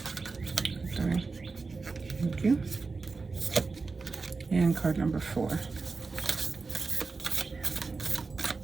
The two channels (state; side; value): quieter; left; 4.2 dB